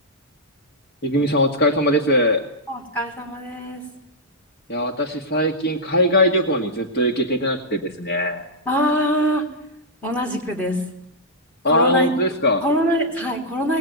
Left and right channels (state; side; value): normal; both; correlation -0.08